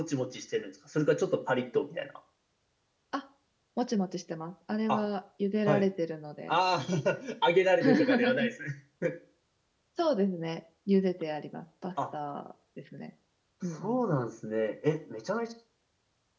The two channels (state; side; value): identical; both; correlation 1.00